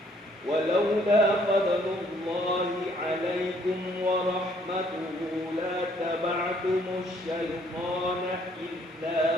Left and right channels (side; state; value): both; normal; correlation 0.64